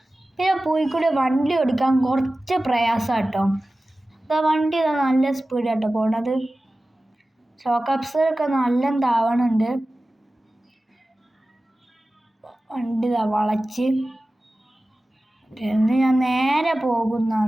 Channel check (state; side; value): normal; both; correlation 0.96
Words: പിന്നെ പോയിക്കൂടെ വണ്ടി ഓടിക്കാൻ കുറച്ച് പ്രയാസമാണ് കേട്ടോ. ഇതാ വണ്ടി നല്ല സ്പീഡാട്ടോ പോണത്. ഷോക്ക് അബ്സർവൊക്കെ നല്ല താവണുണ്ട്. വണ്ടി വളച്ച് ഞാൻ നേരെ